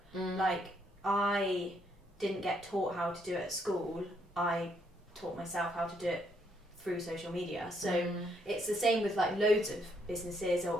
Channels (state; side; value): normal; both; correlation 0.72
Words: Like I didn't get taught how to do it at school. I taught myself how to do it through social media. So it's the same with like loads of businesses,